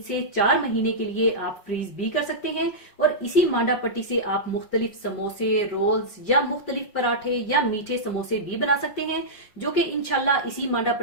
से 4 महीने के लिए आप फ्रीज भी कर सकते हैं। और इसी मांडा पट्टी से आप मुख्तलिफ समोसे, रोल्स या मुख्तलिफ पराठे या मीठे समोसे भी बना सकते हैं, जो कि इंशाल्लाह इसी मांडा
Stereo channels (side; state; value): right; late; 5.1 ms